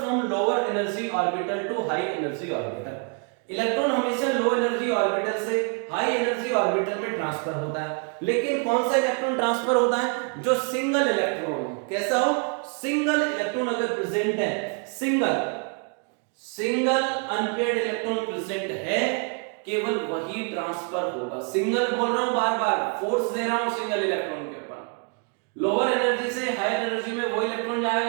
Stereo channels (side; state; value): left; quieter; 38.7 dB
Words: lower energy orbital to high energy orbital. Electron हमेशा लो एनर्जी ऑर्बिटल से हाई एनर्जी ऑर्बिटल में ट्रांसफर होता है, लेकिन कौन सा इलेक्ट्रॉन ट्रांसफर होता है, जो सिंगल इलेक्ट्रॉन हो। कैसा हो, सिंगल इलेक्ट्रॉन अगर प्रेजेंट है, सिंगल अनपेयर्ड इलेक्ट्रॉन प्रेजेंट है, केवल वही ट्रांसफर होगा। सिंगल बोल रहा हूं, बार बार फोर्स दे रहा हूं सिंगल इलेक्ट्रॉन के ऊपर। लोअर एनर्जी से हाई एनर्जी में वो इलेक्ट्रॉन